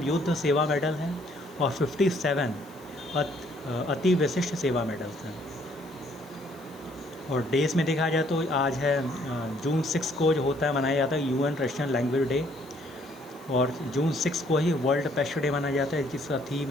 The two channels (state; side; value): noise; right; hiss, 24 dB below the sound